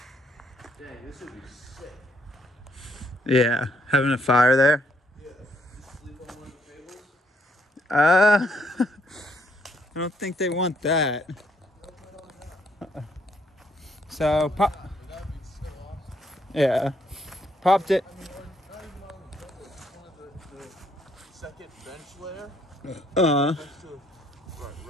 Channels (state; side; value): normal; both; correlation 0.71